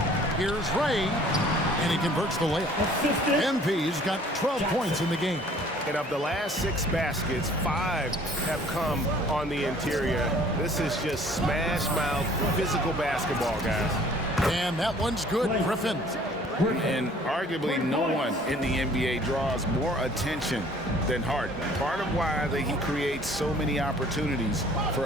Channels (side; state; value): both; normal; correlation 0.54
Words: Here's Ray, and he converts the layup. MP's got 12 points in the game. And of the last 6 baskets, 5 have come on the interior. This is just smash mouth physical basketball, guys. And that one's good, Griffin. And arguably no one in the NBA draws more attention than Harden. Part of why he creates so many opportunities